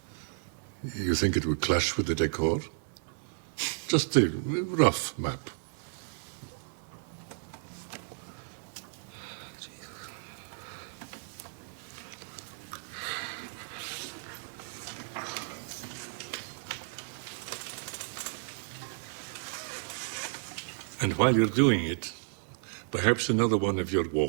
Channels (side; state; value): left; silent; 56 dB below the other